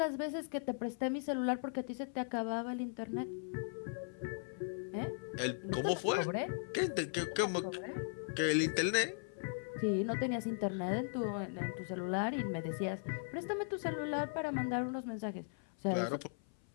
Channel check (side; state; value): right; silent; 52 dB below the other